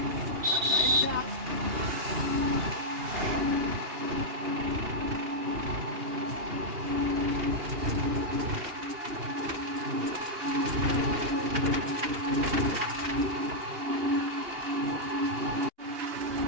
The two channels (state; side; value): late; left; 2.8 ms